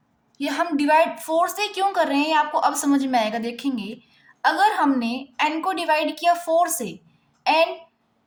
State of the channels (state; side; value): identical; both; correlation 1.00